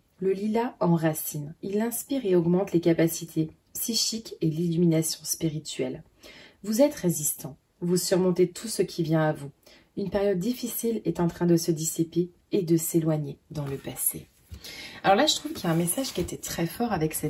Le lilas enracine. Il inspire et augmente les capacités psychiques et l'illumination spirituelle. Vous êtes résistant. Vous surmontez tout ce qui vient à vous. Une période difficile est en train de se dissiper et de s'éloigner dans le passé. Alors là, je trouve qu'il y a un message qui était très fort avec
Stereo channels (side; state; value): both; identical; correlation 1.00